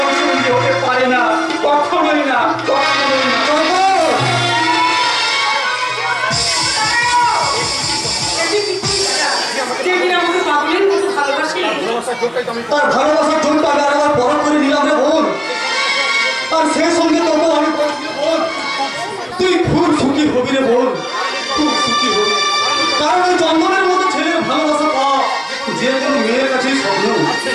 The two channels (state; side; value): identical; both; correlation 1.00